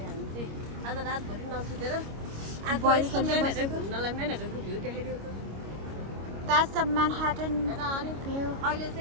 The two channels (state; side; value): late; left; 25 ms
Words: हामी चाहिँ आज रातभरि नसुतेर घुम्नलाई म्यानहट्टनको भ्यू देखाइदियो त. That's the Manhattan हैन. अनि view. अहिले